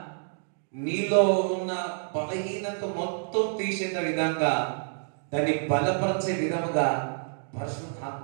నీలో ఉన్న బలహీనత మొత్తం తీసేట విధంగా, దాన్ని బలపరిచే విధముగా పరిశుద్ధాత్మ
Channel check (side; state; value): left; silent; digital silence